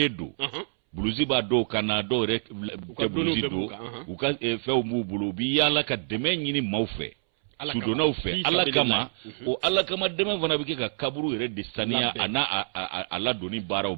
don bulusi b'a dɔw kan na dɔw yɛrɛ tɛ bulusi don u ka fɛnw b'u bolo u bɛ yaala ka dɛmɛ ɲini maaw fɛ sudonnaw fɛ ala kama o ala kama dɛmɛ fana bɛ kɛ ka kaburu yɛrɛ de saniya a n'a a ladonni baaraw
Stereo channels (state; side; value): silent; left; 60 dB below the other